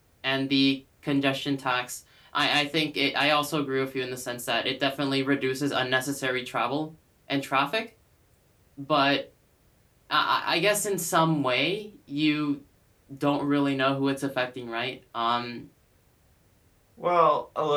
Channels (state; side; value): identical; both; correlation 1.00